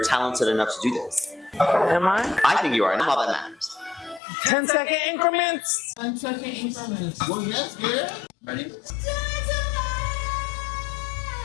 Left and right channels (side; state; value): right; drops out; at 4.2 s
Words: talented enough to do this. Am I? I think you are, and all that matters. 10-second increments. 10-second increments. Well, yes, girl. Ready?